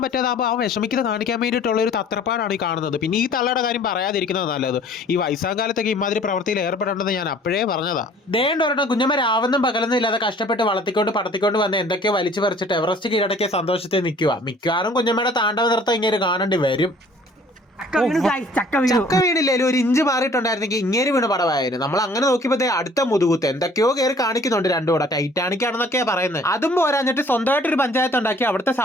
പറ്റാതാകുമ്പോൾ ആ വിഷമിക്കുന്നത് കാണിക്കാൻ വേണ്ടിയിട്ടുള്ള ഒരു തത്രപ്പാടാണ് ഈ കാണുന്നത്. പിന്നെ ഈ തള്ളയുടെ കാര്യം പറയാതിരിക്കുന്നത് നല്ലത്. ഈ വയസ്സാകാലത്തൊക്കെ ഇമാതിരി പ്രവൃത്തിയിൽ ഏർപ്പെടേണ്ടത് ഞാൻ അപ്പോഴേ പറഞ്ഞതാ. ദേണ്ട ഒരെണ്ണം കുഞ്ഞമ്മ രാവെന്നും പകലൊന്നും ഇല്ലാതെ കഷ്ടപ്പെട്ട് വളർത്തിക്കൊണ്ട് പടത്തിക്കൊണ്ട് വന്ന് എന്തൊക്കെയോ വലിച്ചു പറിച്ചിട്ട് എവറസ്റ്റ് കീഴടക്കിയ സന്തോഷത്തിൽ നിൽക്കുക. മിക്കവാറും കുഞ്ഞമ്മയുടെ താണ്ഡവ നൃത്തം ഇങ്ങനെ കാണേണ്ടി വരും. ചക്ക വീണില്ലേലും ഒരു ഇഞ്ച് മാറിയിട്ടുണ്ടായിരുന്നെങ്കിൽ ഇങ്ങനെ വീണ് പടമായിരുന്നു. നമ്മൾ അങ്ങനെ നോക്കിയപ്പോ അടുത്ത മുതുകുത്ത് എന്തൊക്കെയോ കയറി കാണിക്കുന്നുണ്ട്. രണ്ടും കൂടെ ടൈറ്റാനിക് ആണെന്നൊക്കെയാ പറയുന്നത്. അതും പോരാഞ്ഞിട്ട് സ്വന്തമായിട്ട് ഒരു പഞ്ചായത്ത് ഉണ്ടാക്കി അവിടുത്തെ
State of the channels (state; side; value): normal; both; correlation 0.53